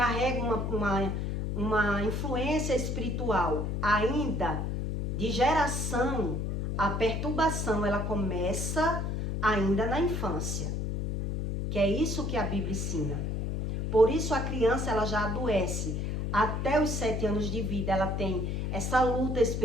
uma influência espiritual ainda de geração, a perturbação ela começa ainda na infância. Que é isso que a Bíblia ensina. Por isso a criança ela já adoece. Até os 7 anos de vida ela tem essa luta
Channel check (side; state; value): left; noise; hum, 1 dB below the sound